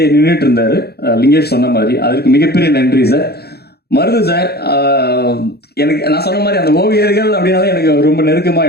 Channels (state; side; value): late; right; 0.47 ms